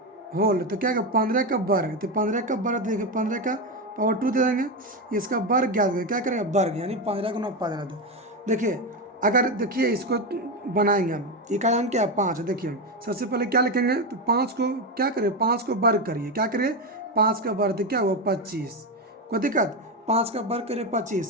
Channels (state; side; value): normal; both; correlation 0.12